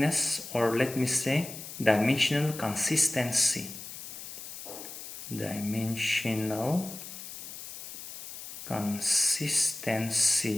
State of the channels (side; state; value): left; noise; hiss, 11 dB below the sound